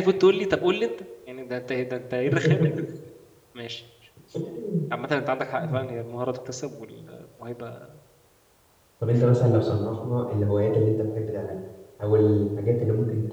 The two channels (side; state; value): both; identical; correlation 1.00